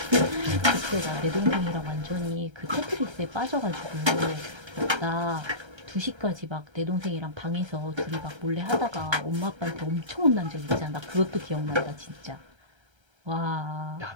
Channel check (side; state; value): left; late; 1.3 ms